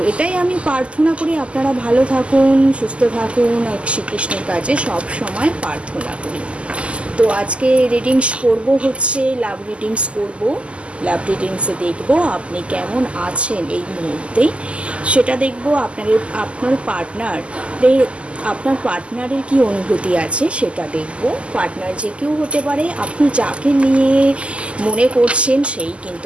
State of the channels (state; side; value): late; left; 0.056 ms